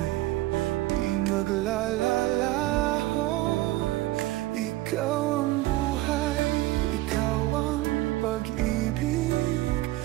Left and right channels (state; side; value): quieter; left; 17.6 dB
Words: di maglalalaho. Ikaw ang buhay, ikaw ang pag-ibig.